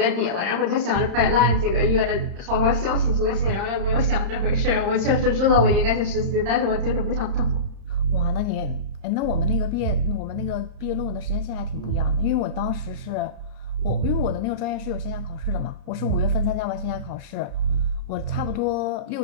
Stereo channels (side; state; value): left; late; 30 ms